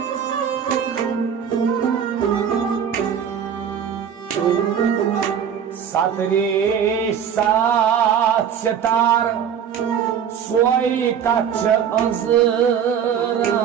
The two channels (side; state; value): left; quieter; 8.2 dB